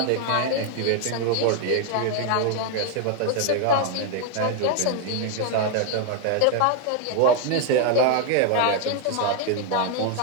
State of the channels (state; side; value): different; both; correlation 0.01